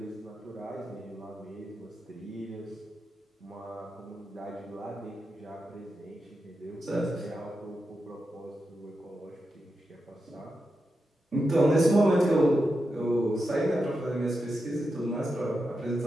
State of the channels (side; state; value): both; normal; correlation 0.88